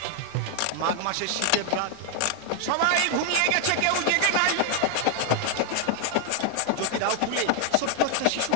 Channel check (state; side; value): different; both; correlation 0.00